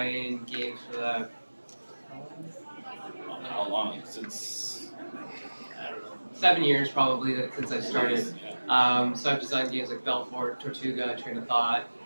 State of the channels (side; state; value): both; inverted; correlation -1.00